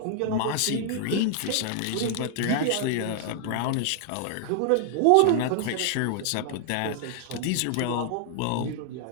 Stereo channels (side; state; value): both; different; correlation -0.01